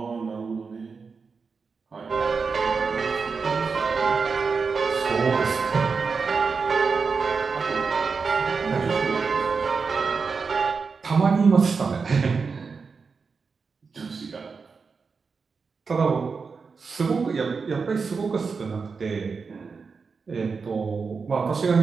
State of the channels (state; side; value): quieter; left; 5.0 dB